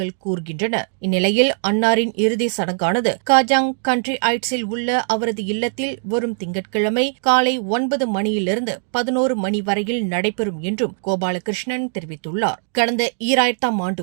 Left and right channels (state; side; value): silent; left; digital silence